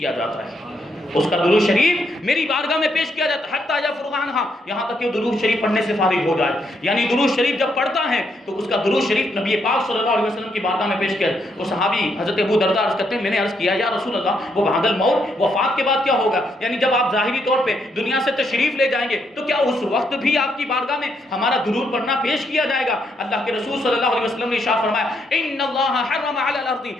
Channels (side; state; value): both; normal; correlation 0.76